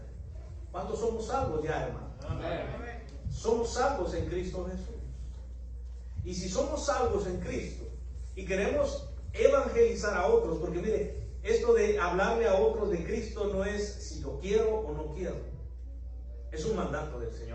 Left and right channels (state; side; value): identical; both; correlation 1.00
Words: ¿Cuántos somos salvos ya, hermano? Amén. Somos salvos en Cristo Jesús. Y si somos salvos en Cristo y queremos evangelizar a otros, porque mire, esto de hablarle a otros de Cristo no es si yo quiero o no quiero. Es un mandato del